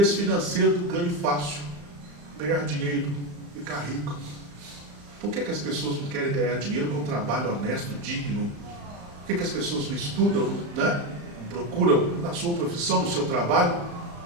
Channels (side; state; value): left; late; 35 ms